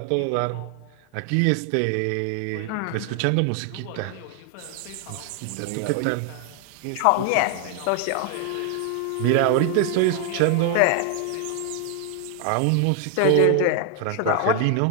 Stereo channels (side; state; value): both; different; correlation 0.00